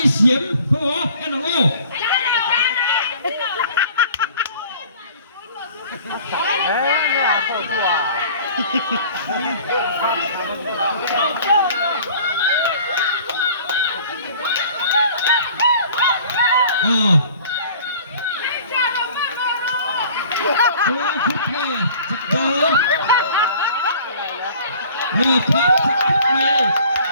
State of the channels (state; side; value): inverted; both; correlation -0.48